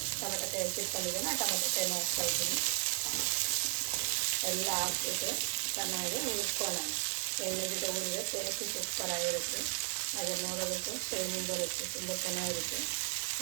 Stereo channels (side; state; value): left; silent; 54 dB below the other